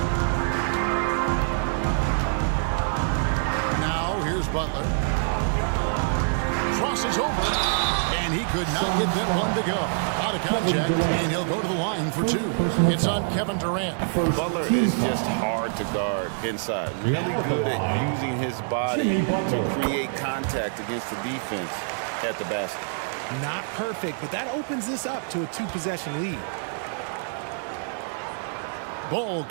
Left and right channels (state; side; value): silent; left; digital silence